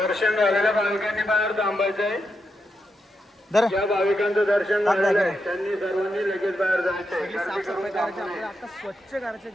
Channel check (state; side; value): normal; both; correlation 0.85